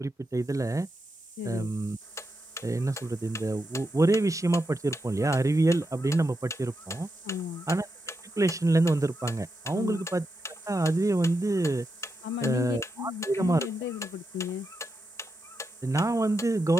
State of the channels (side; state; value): both; normal; correlation 0.86